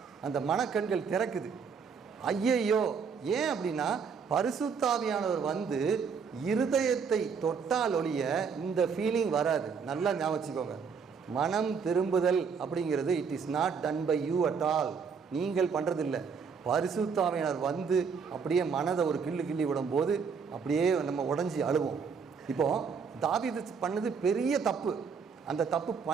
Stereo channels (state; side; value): quieter; left; 6.0 dB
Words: அந்த மனக்கண்கள் திறக்குது. ஐயையோ, ஏன் அப்படின்னா பரிசுத்தாவியானவர் வந்து இருதயத்தை தொட்டால் ஒழிய இந்த ஃபீலிங் வராது. நல்லா ஞாபகம் வச்சுக்கோங்க. மனம் திரும்புதல் அப்படிங்கிறது it is not done by you at all. நீங்கள் பண்ணுறதில்லை. பரிசுத்தாவியானவர் வந்து அப்படியே மனதை ஒரு கிள்ளி விடும்போது அப்படியே நம்ம உடஞ்சி அழுவோம். இப்போது தாவீது பண்ணது பெரிய தப்பு. அந்த தப்பு